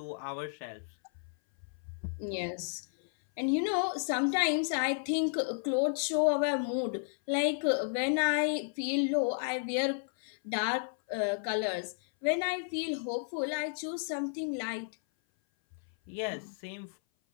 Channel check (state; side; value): silent; right; 56 dB below the other